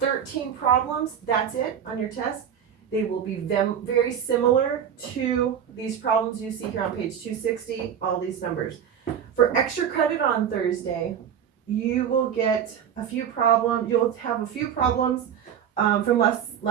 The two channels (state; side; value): quieter; left; 8.7 dB